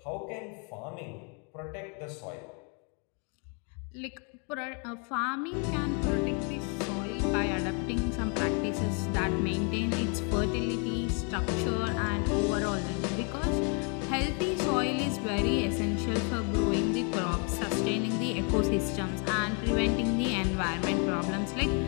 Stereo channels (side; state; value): right; quieter; 36.9 dB